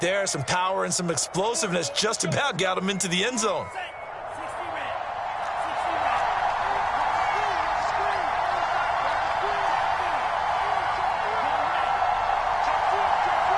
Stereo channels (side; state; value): both; identical; correlation 1.00